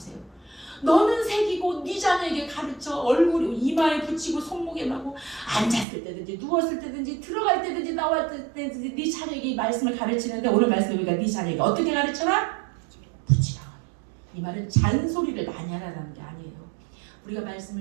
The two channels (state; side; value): drops out; left; at 5.9 s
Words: 너는 새기고 네 자녀에게 가르쳐 얼굴 이마에 붙이고 손목에 마고 앉았을 때든지 누웠을 때든지 들어갈 때든지 나왔을 때든지 네 자녀에게 말씀을 가르치는데 오늘 말씀 우리가 네 자녀에게 어떻게 가르쳐라? 붙이라. 이 말은 잔소리를 많이 하라는 게 아니에요. 우리가